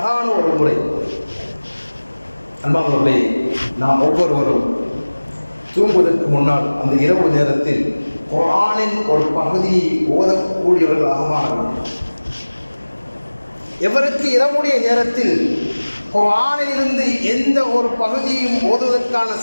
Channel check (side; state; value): both; inverted; correlation -1.00